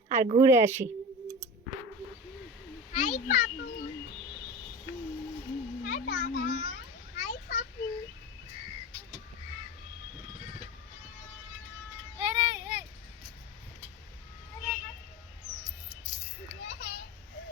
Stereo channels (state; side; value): normal; both; correlation 0.29